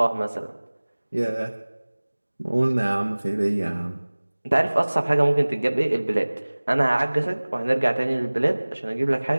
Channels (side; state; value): both; inverted; correlation -1.00